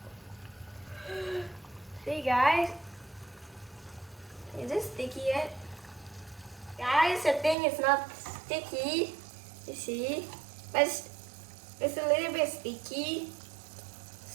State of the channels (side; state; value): left; drops out; at 7.6 s